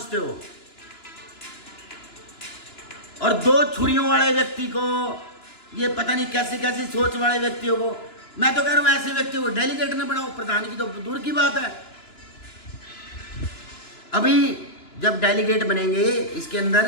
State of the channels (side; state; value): right; late; 2.9 ms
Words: हो। और 2 छुरियों वाले व्यक्ति को, ये पता नहीं कैसी कैसी सोच वाले व्यक्तियों को, मैं तो कह रहा हूं ऐसे व्यक्ति को डेलीगेट न बनाओ। प्रधान की तो दूर की बात है। अभी जब डेलीगेट बनेंगे, इसके